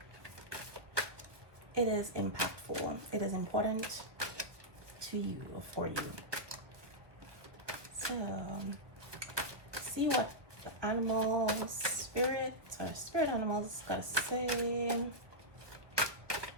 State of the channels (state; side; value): late; left; 1.0 ms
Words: it is impactful. It is important to you or for you. So, see what the animal spirit or spirit animals gotta say.